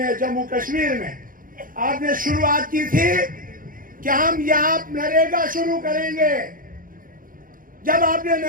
जम्मू कश्मीर में आपने शुरुआत की थी कि हम यहां नरेगा शुरू करेंगे। जब आपने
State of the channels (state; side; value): late; left; 0.40 ms